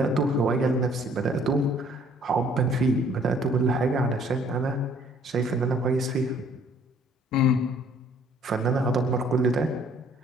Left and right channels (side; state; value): both; normal; correlation 0.59